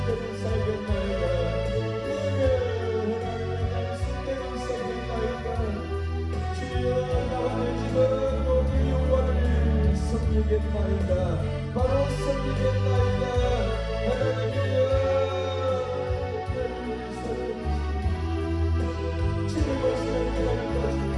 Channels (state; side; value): identical; both; correlation 1.00